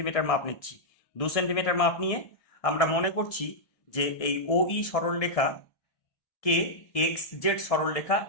মাপ নিচ্ছি। 2 সেন্টিমিটার মাপ নিয়ে আমরা মনে করছি যে এই OE সরলরেখা কে XZ সরলরেখা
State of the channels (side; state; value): right; late; 1.7 ms